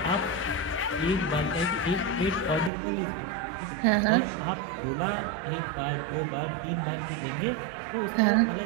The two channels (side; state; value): left; drops out; at 2.7 s